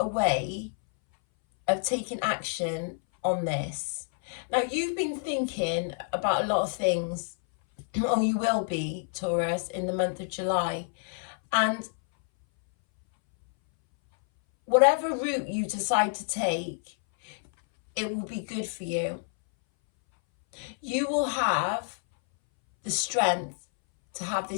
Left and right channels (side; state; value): right; silent; 59 dB below the other